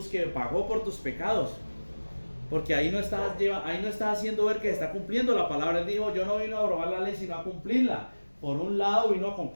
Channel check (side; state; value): both; inverted; correlation -1.00